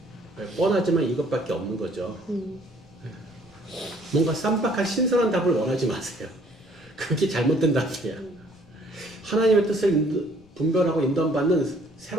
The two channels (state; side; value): noise; left; rumble, 27 dB below the sound